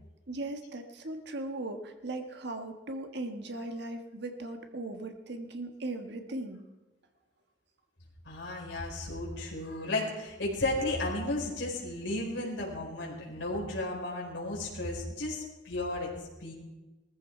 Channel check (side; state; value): both; normal; correlation 0.11